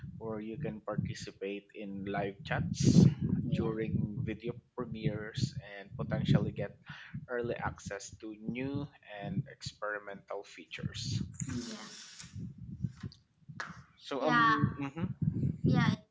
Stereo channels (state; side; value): identical; both; correlation 1.00